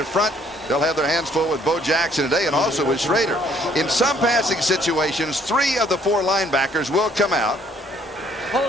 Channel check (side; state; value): both; normal; correlation 0.63